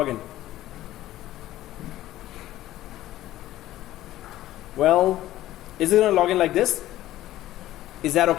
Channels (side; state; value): right; quieter; 14.6 dB